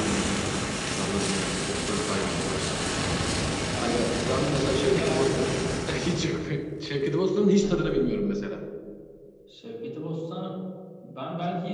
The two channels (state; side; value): identical; both; correlation 1.00